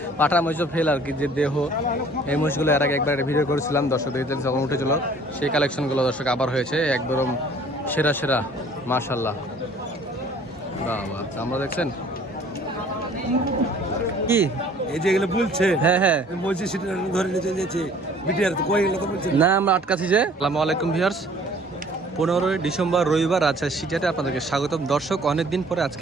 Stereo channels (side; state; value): both; normal; correlation 0.53